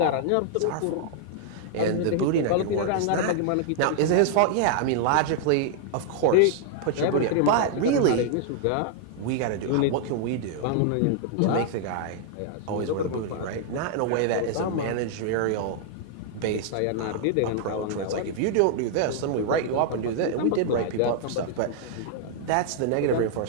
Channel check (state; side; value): different; both; correlation -0.01